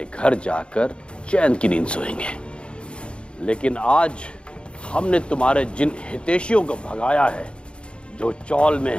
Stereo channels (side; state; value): right; late; 0.056 ms